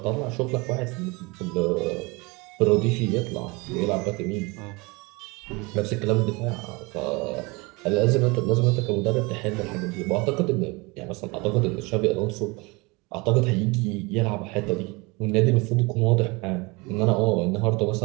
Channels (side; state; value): left; quieter; 26.2 dB